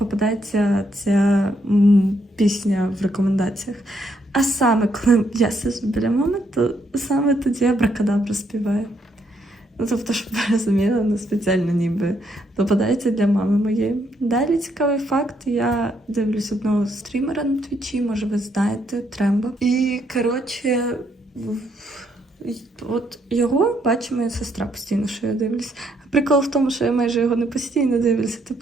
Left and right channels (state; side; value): normal; both; correlation 0.74